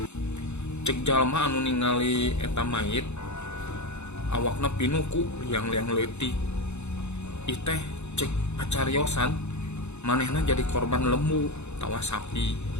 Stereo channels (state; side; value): late; right; 0.82 ms